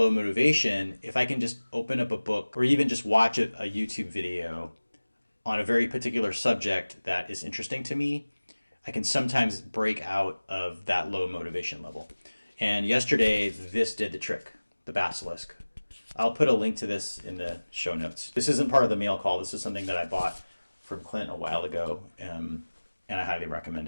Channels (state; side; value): inverted; both; correlation -1.00